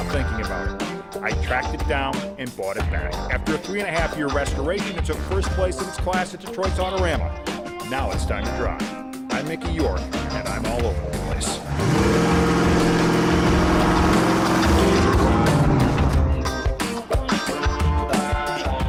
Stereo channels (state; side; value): identical; both; correlation 1.00